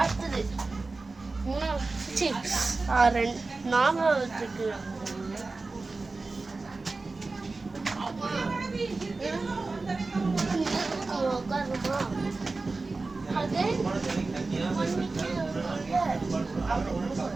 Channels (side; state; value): left; quieter; 3.6 dB